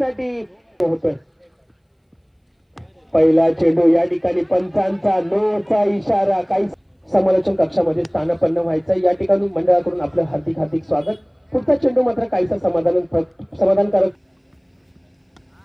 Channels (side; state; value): both; identical; correlation 1.00